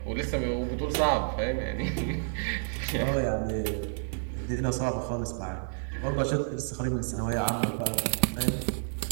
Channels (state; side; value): silent; left; digital silence